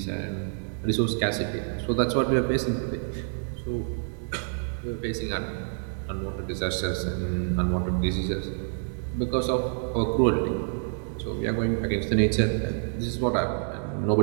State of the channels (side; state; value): left; silent; digital silence